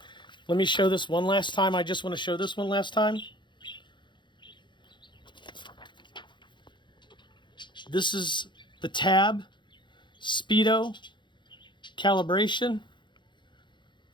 Let me show this one last time. I just want to show this one last time. This is the tab, speedo, calibration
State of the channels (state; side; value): late; right; 0.23 ms